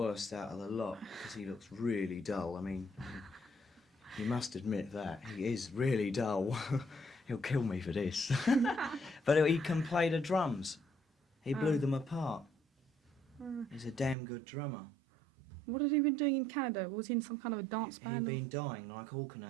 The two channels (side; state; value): left; drops out; at 14.2 s